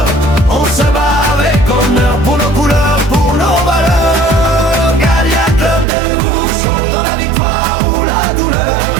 On se bat avec honneur pour nos couleurs, pour nos valeurs. Galia Club de Houchot, dans la victoire ou la douleur.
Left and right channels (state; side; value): drops out; left; at 5.9 s